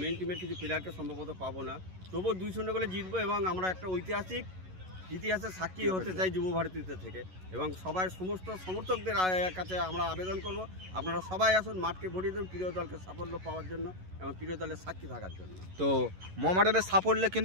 টিমের কিছু প্লেয়ারকে সম্ভবত পাবো না, তবুও 2-0 গোলে জিতবো এবং আমরা একটা ঐতিহাসিক ইতিহাসের সাক্ষী হতে চাই যুব ভারতীতে থেকে, এবং সবাই সমস্ত সমর্থকদের কাছে আমরা আবেদন করব আপনারা সবাই আসুন, মাঠকে ভরিয়ে দেন প্রিয় দলকে সাফল্য পাওয়ার জন্য এবং প্রিয় দলের সাক্ষী থাকার জন্য। তো মোহামেডানের সাফল্যে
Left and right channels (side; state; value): left; late; 11 ms